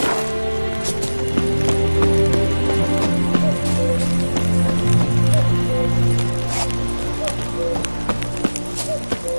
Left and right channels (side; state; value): both; inverted; correlation -1.00